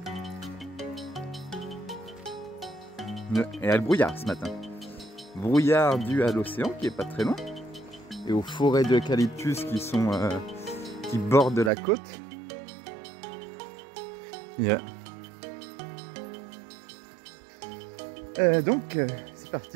Et il y a le brouillard ce matin. Brouillard dû à l'océan qui est pas très loin. Et aux forêts d'eucalyptus qui bordent la côte. Yeah. Donc c'est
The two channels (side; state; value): left; drops out; at 11.7 s